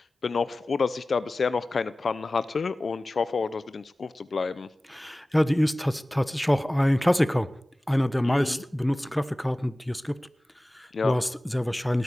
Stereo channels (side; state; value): both; normal; correlation 0.97